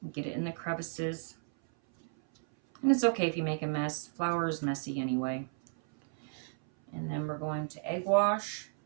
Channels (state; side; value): silent; left; 56 dB below the other